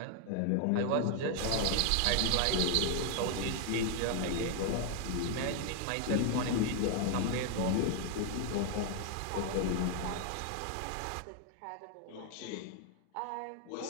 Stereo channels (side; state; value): both; different; correlation 0.00